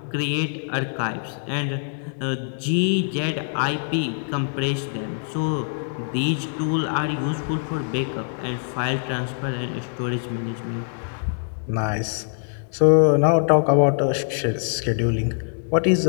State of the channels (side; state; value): right; silent; digital silence